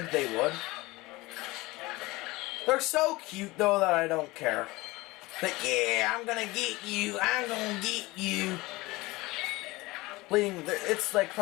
they would. They're so cute, though, that I don't care. Like, yeah, I'm gonna get you. I'm gonna get you. It's like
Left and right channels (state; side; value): quieter; right; 21.2 dB